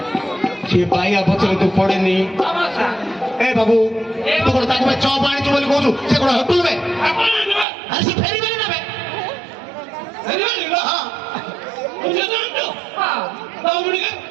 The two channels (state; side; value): drops out; left; at 7.7 s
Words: ସେ ପାଇବା ପଛରେ ତୁ ପଡେନି ଏ ବାବୁ ତୁ କଣ ତାକୁ ଚପ ଆଣିଛୁ ବୋଲି କହୁଛୁ ସେ କଣ ହୋଟେଲ ବେ ଆରେ ସେ ଫେରିବେନି ନା ବେ